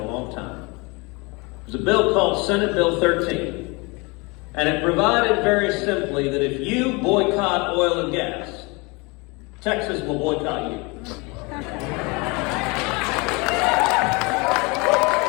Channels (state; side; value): quieter; right; 27.6 dB